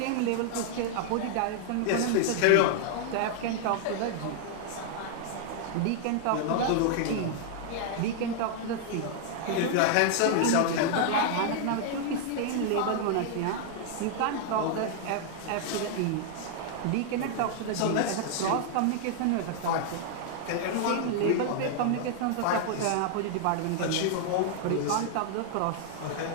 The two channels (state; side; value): different; both; correlation 0.00